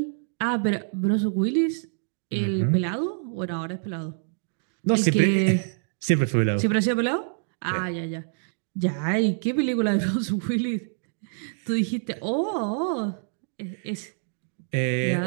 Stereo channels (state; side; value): silent; left; digital silence